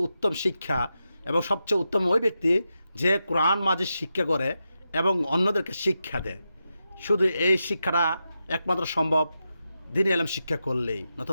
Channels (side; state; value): both; inverted; correlation -0.88